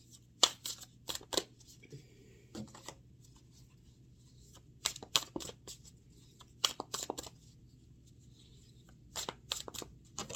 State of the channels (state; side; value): normal; both; correlation 0.96